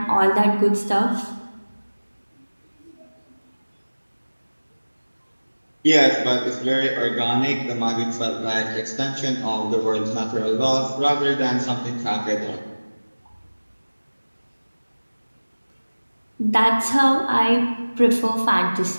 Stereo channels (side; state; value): both; inverted; correlation -1.00